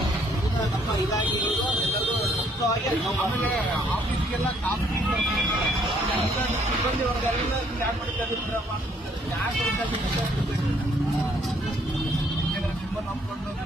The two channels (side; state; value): both; normal; correlation 0.66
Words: ನಮ್ಮ ಇಲಾಖೆಗಳು ಎಲ್ಲರೂ ಮುಕ್ತವಾಗಿ ಆಮೇಲೆ ಆಫೀಸ್ಗೆಲ್ಲ ಕಾಫಿ ಸಿಬ್ಬಂದಿ ವರ್ಗರೆಲ್ಲ ಯಾಕೆ ಮಾಡಿದ್ದಾರಪ್ಪ, ಯಾಕೆ ತುಂಬ ನಂಬ್ಕೊಂಡು